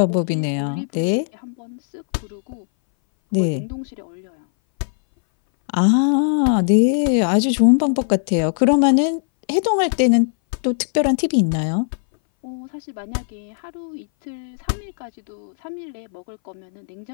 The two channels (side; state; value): right; silent; 61 dB below the other